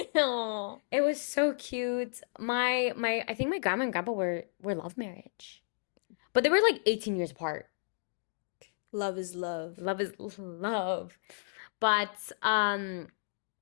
Aww. It was so cute. I think my grandma and grandpa were love marriage. But they were like 18 years apart. Love is love. Love is love. But again,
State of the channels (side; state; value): right; silent; digital silence